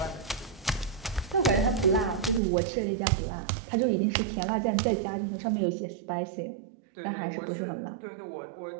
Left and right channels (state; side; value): drops out; left; at 2.4 s